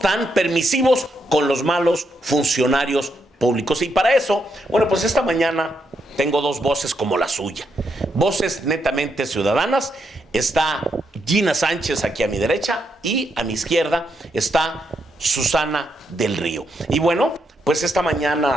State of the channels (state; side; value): normal; both; correlation 0.80